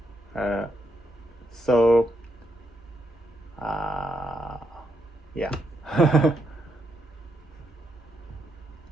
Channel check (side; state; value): both; normal; correlation 0.80